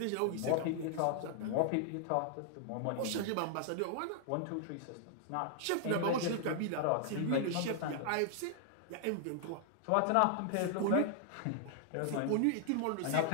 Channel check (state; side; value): different; both; correlation 0.00